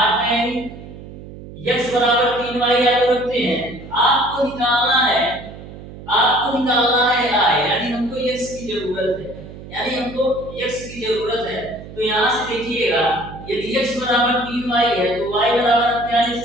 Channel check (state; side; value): noise; right; hum, 15 dB below the sound